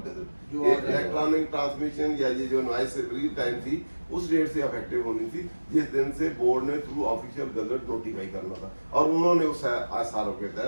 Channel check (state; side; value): inverted; both; correlation -1.00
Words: gazette. जो ये आ जाएगा। Electronic transmission या ये जो noise real time थी उस date से affective होनी थी जिस दिन से बोर्ड ने थ्रू ऑफिशियल गजट नोटिफाई करना था, और उन्होंने उस आसारों के कर